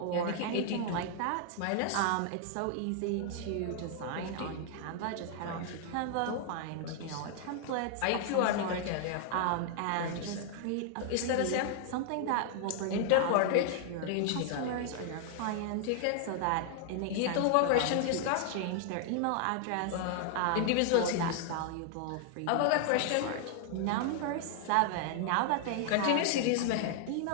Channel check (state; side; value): different; both; correlation 0.00